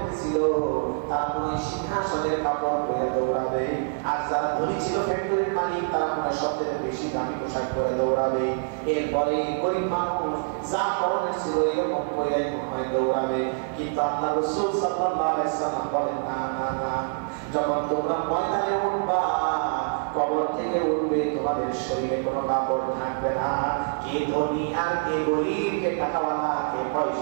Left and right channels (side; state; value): left; silent; digital silence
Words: তারা মনে সিংহাসনের কাপড় পরে দৌড়াবে, আর যারা ধনী ছিল ফ্যাক্টরির মালিক তারা মনে সবচেয়ে বেশি দামি পোশাক পরে দৌড়াবে। এরপরে গরিব মানুষ যা পরনের ছিল এরকম পরে মনে দৌড়াবে। কিন্তু আল্লাহ রাসূল সাল্লাল্লাহু আলাইহি সাল্লাম বলেন না না না, যখন তোমরা ময়দানে উঠবা কবর থেকে উঠবে তোমাদের শরীরে কোনো কাপড় থাকবে না। কে ধনী আর কে গরিব, কে টাকাওয়ালা, কে